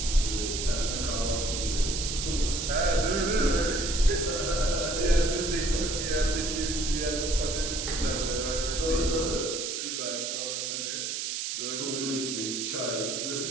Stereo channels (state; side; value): noise; right; hiss, 3 dB below the sound